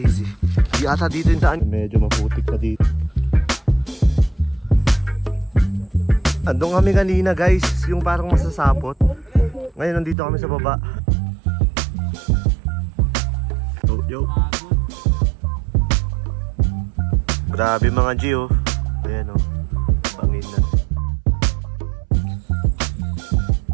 Di ata dito yung daan. Medyo maputik na dito. Andun kami kanina guys, yung parang masasapot. Ngayon nandito kami sa baba. Oh, yo. Grabe mga G oh. Ayan oh. Bangin na.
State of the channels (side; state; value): left; drops out; at 10.2 s